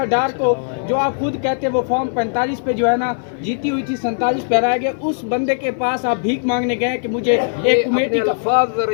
ڈار کو جو آپ خود کہتے ہیں وہ فارم 45 پہ جو ہے نا جیتی ہوئی تھی 47 پہ ہرایا گیا، اس بندے کے پاس آپ بھیک مانگنے گئے کہ مجھے ایک کمیٹی کا الفاظ ذرا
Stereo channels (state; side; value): silent; right; 57 dB below the other